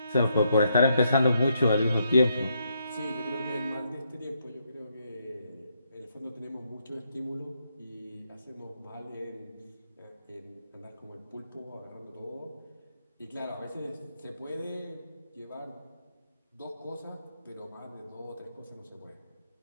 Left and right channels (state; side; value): inverted; both; correlation -0.77